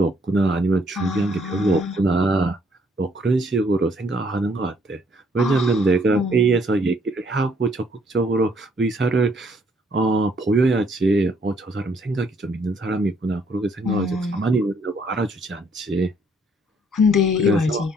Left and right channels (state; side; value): normal; both; correlation 0.67